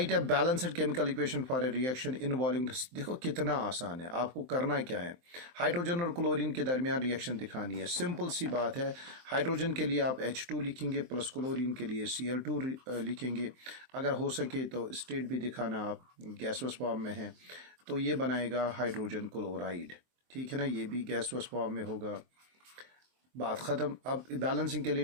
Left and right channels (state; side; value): late; left; 23 ms